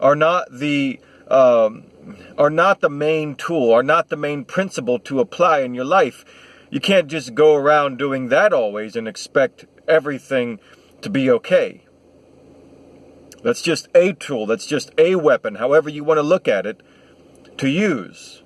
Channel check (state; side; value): identical; both; correlation 1.00